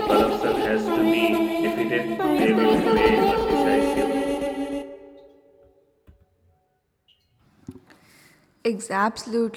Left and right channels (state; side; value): identical; both; correlation 1.00